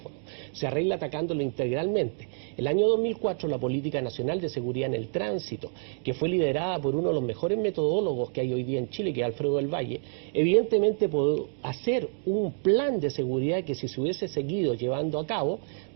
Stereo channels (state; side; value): silent; left; digital silence